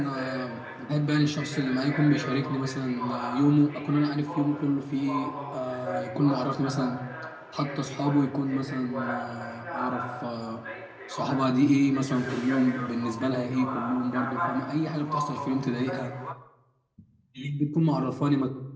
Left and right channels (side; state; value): both; identical; correlation 1.00